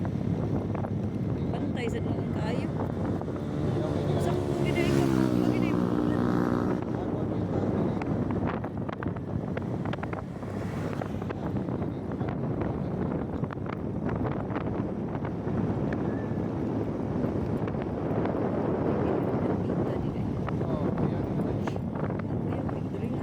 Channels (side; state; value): both; identical; correlation 1.00